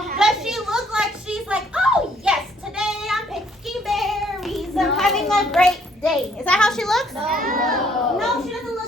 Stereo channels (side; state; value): both; normal; correlation 0.65